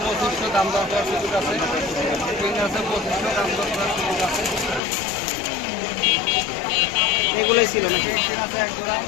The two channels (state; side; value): drops out; right; at 4.8 s